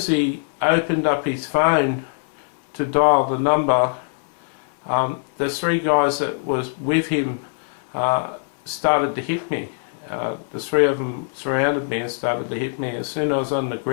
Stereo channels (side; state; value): right; silent; 56 dB below the other